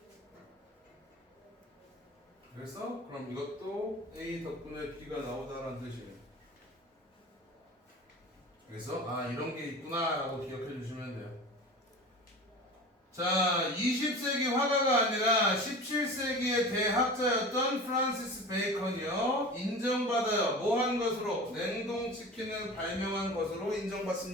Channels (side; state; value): both; normal; correlation 0.35